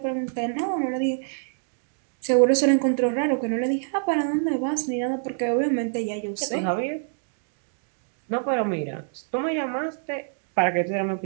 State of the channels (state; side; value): silent; left; digital silence